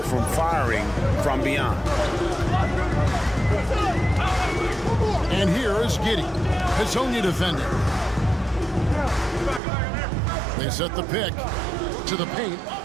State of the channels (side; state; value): left; drops out; at 9.6 s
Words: from firing from beyond. And here is Giddey. Hezonja defending. They set the pick to the paint.